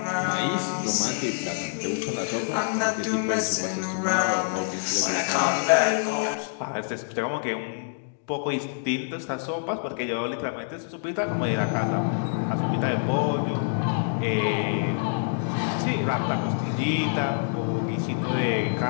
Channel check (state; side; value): silent; right; digital silence